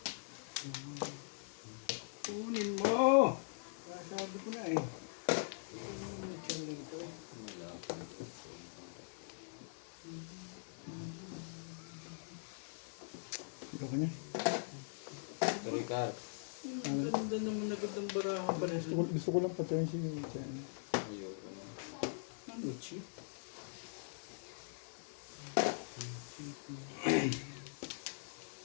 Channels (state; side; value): silent; right; 50 dB below the other